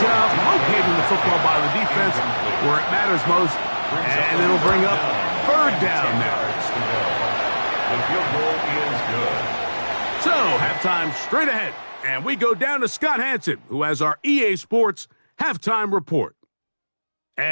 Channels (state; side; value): inverted; both; correlation -1.00